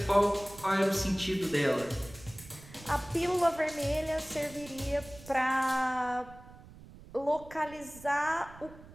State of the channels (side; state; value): right; noise; rumble, 19 dB below the sound